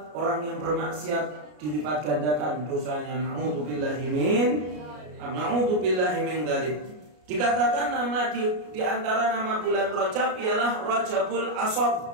orang yang bermaksiat dilipat gandakan dosanya. Na'udzubillahi min dzalik. Dikatakan nama di antara nama bulan Rajab ialah Rajabul Ashab.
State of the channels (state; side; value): late; left; 33 ms